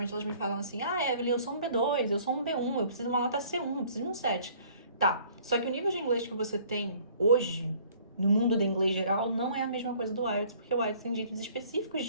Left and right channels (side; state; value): both; inverted; correlation -0.55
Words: elas me falam assim: ah, Evelyn, eu sou um B2, eu sou um B1, eu preciso de uma nota C1, eu preciso de um 7. Tá, só que o nível de inglês que você tem hoje, no mundo do inglês geral, não é a mesma coisa do IELTS, porque o IELTS tem jeitos específicos